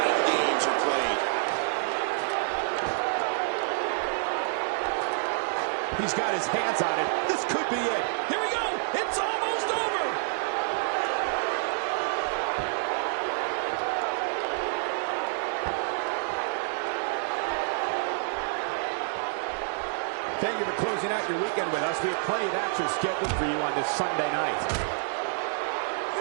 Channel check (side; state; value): left; silent; 59 dB below the other